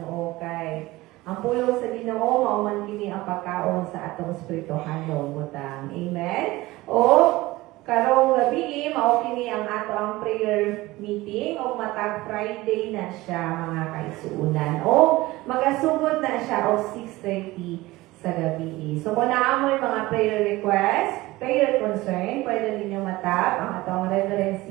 kay ang pulong sa Ginoo mao man kini ang pagkaon sa atong espirituhanong butang. Amen. O karong gabi mao kini ang ato ang prayer meeting o matag Friday na siya mga kaigsuunan. O magasugod na siya o 6:30 sa gabi. So kung naamoy mga prayer request, prayer concern, pwede ninyo matap ang atong Reverend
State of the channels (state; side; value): quieter; left; 19.3 dB